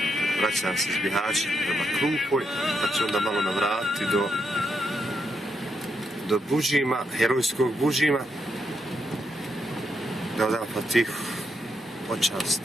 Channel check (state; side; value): normal; both; correlation 0.81